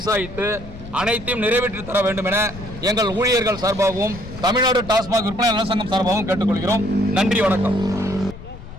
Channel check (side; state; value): left; noise; rumble, 14 dB below the sound